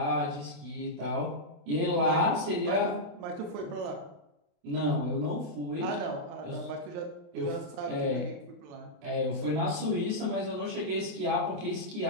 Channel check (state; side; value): late; left; 27 ms